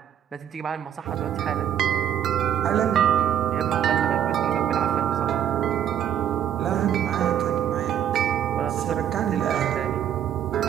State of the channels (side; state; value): left; quieter; 9.9 dB